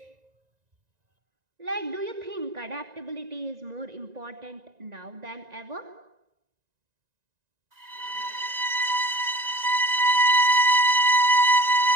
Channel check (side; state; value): left; late; 1.9 ms